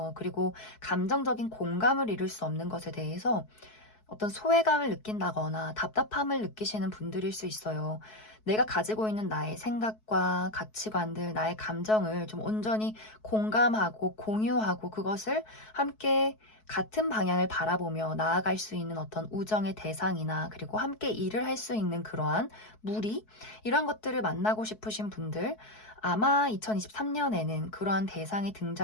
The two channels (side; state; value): right; late; 4.6 ms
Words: 그리고 감정적인 공감을 이룰 수 없는 것에 대해서 어떤 소외감을 느낀다거나 답답함을 느끼시는 분들일 수 있어요. 내가 가지고 있는 나의 생각과 가치관들, 나의 감정을 좀 온전히 공감하고 공유하고 그것을 함께 같은 방향을 바라보며 나아갈 수 있는 어떤 우정의 대상이나 그리고 함께 일을 할 수 있는 그러한 무리 이런 것들을 만나고 싶으신 분들 아마 2023년에는 그러한 대상의